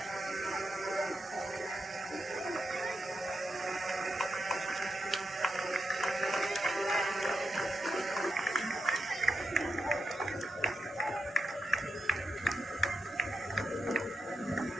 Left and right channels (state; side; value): normal; both; correlation 0.87